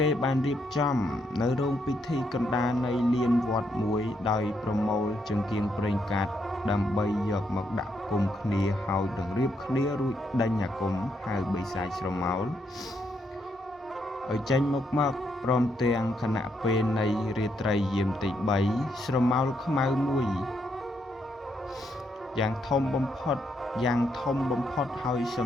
េបានរៀបចំនៅរោងពិធីកណ្ដាលនៃលានវត្តមួយដោយប្រមូលចង្គៀងប្រេងកាតដើម្បីយកមកដាក់គុំគ្នាហើយនឹងរៀបគ្នារួចដេញអាគមហៅបីសាចស្រមោលឲ្យចេញមកព្រមទាំងគណៈពេលនៃរាត្រីយាមទី3ស្រមោលខ្មៅមួយយ៉ាងធំបំផុតហើយស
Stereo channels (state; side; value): normal; both; correlation 0.77